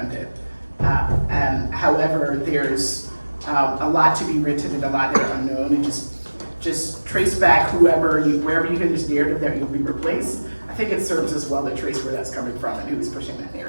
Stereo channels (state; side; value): inverted; both; correlation -1.00